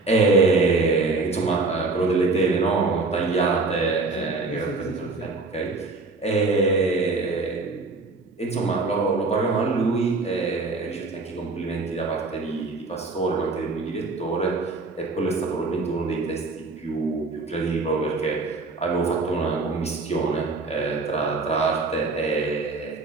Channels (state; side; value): quieter; left; 3.6 dB